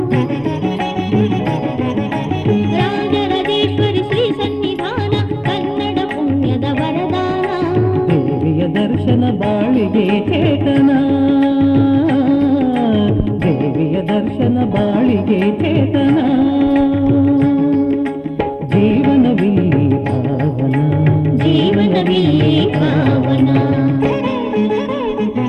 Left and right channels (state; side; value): identical; both; correlation 1.00